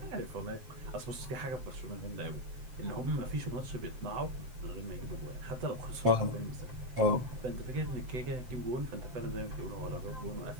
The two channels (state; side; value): late; left; 7.8 ms